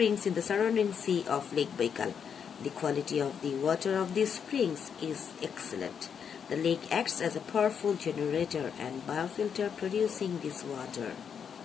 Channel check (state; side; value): quieter; right; 7.3 dB